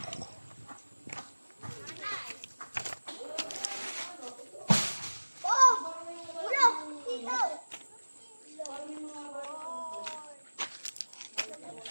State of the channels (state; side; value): inverted; both; correlation -1.00